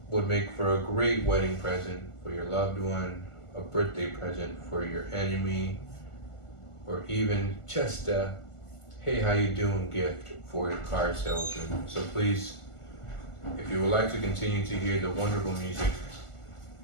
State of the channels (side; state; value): right; late; 1.4 ms